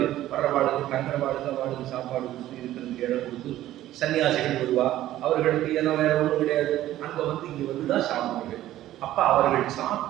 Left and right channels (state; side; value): quieter; left; 13.9 dB